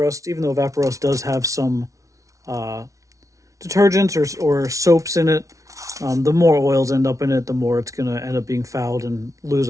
even though Evaporust does have some detergents or soaps in it. The more oils end up in it, the more it's going to end up being fouled and lose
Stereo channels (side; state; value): left; late; 0.16 ms